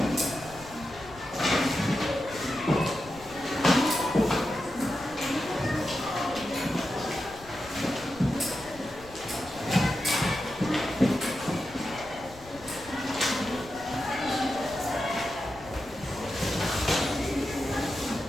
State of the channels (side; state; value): left; noise; rumble, 20 dB below the sound